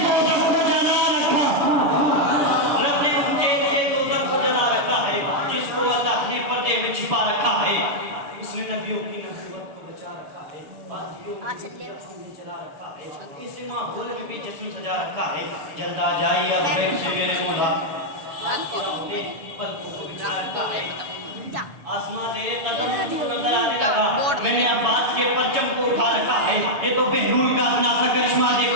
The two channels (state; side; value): late; left; 6.9 ms